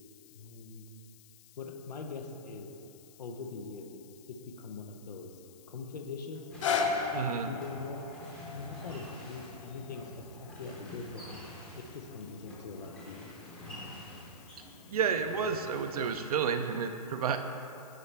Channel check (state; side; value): noise; left; hiss, 20 dB below the sound